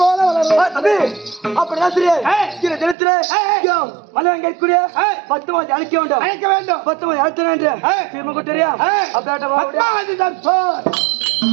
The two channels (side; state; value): left; drops out; at 3.0 s